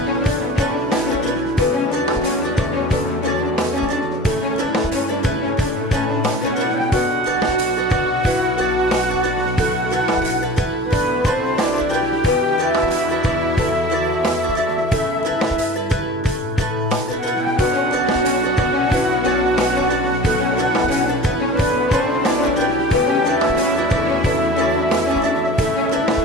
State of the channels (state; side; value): normal; both; correlation 0.39